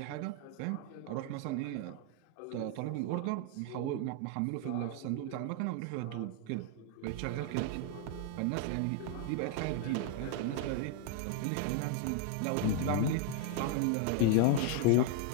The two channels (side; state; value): both; different; correlation 0.00